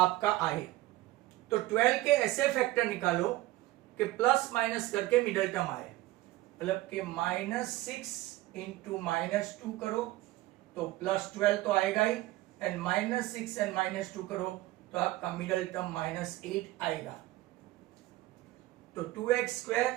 आए। तो 12 के ऐसे फैक्टर निकालो कि प्लस माइनस करके मिडल टर्म आए, मतलब कि -6 इंटू -2 करो तो +12 तो आएगा ही, एंड -6 एंड -2 करो तो आपका मिडल टर्म -8 आएगा। तो 2x square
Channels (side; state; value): left; quieter; 17.7 dB